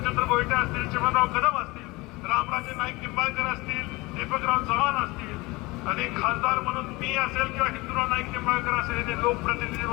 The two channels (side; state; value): right; quieter; 22.7 dB